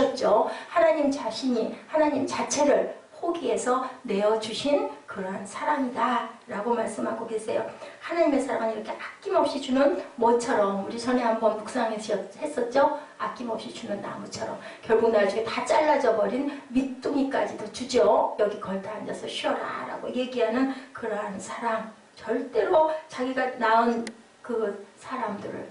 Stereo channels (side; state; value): both; identical; correlation 1.00